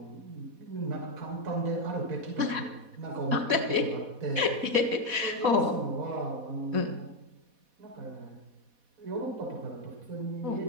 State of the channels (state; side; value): late; left; 4.1 ms